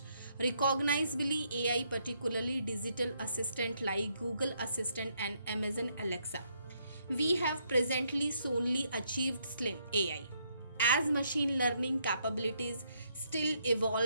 recognizably AI, particularly digital assistant like Google Assistant and Amazon Alexa. We have presently solely achieved slim AI. As machine learning capabilities still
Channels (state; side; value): inverted; both; correlation -0.74